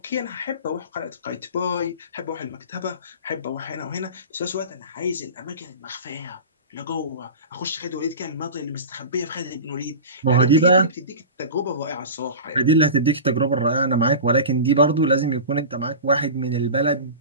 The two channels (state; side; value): inverted; both; correlation -0.32